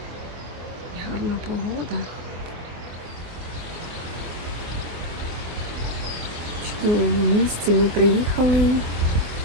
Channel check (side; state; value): left; late; 24 ms